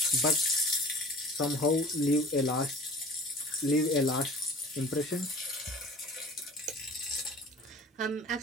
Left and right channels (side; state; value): both; normal; correlation 0.43